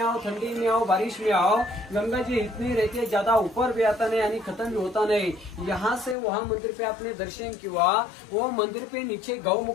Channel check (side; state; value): right; drops out; at 6.2 s